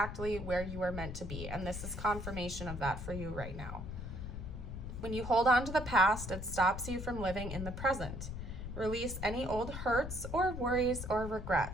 where you are meant to be. And this is confirmation of that for you right now. When you hold on to the past, it stops you from living in the present. Release any old hurts or worries or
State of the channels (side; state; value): left; noise; rumble, 7 dB below the sound